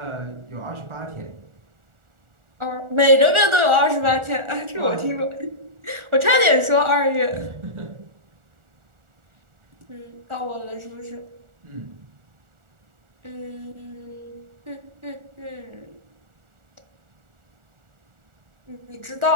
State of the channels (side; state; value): left; late; 1.4 ms